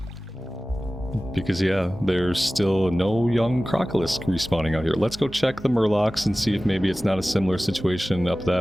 Because yeah, there's still no young Crocolisk respawning out here. Let's go check the Murlocs and see if maybe it's not a similar situation up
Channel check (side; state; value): both; normal; correlation 0.97